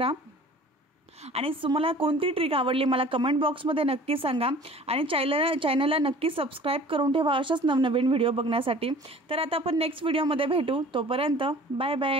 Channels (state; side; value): normal; both; correlation 0.46